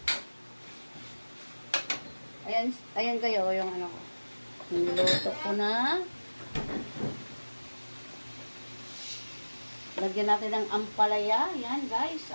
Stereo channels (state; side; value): inverted; both; correlation -1.00